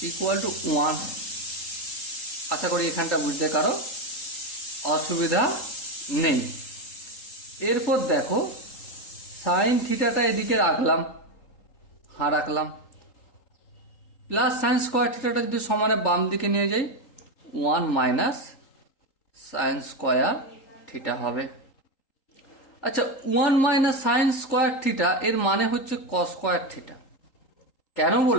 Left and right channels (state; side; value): late; right; 3.8 ms